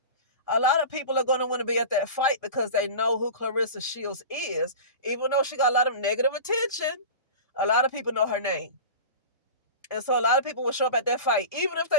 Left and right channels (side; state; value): both; inverted; correlation -0.32